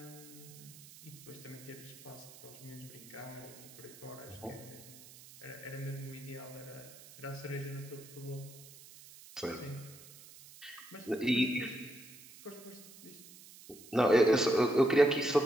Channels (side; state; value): right; noise; hiss, 19 dB below the sound